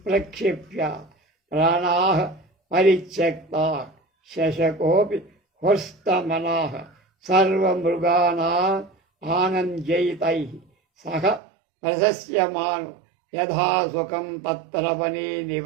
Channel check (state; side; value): drops out; left; at 11.4 s